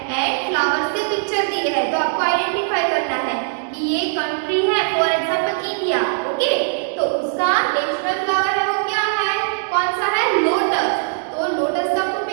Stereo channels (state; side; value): silent; left; digital silence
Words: एंड फ्लावर्स के पिक्चर दिए हैं। तो आपको आइडेंटिफाई करना है कि ये कंट्री है, फॉर एग्जांपल इंडिया। ओके, तो उसका नेशनल फ्लावर है वो क्या है? कौन सा है? लोटस। तो लोटस का आपको